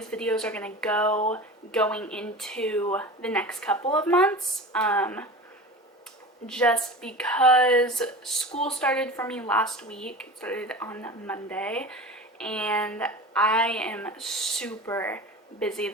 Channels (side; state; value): both; normal; correlation 0.33